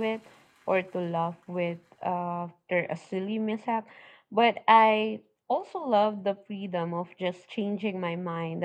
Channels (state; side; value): identical; both; correlation 1.00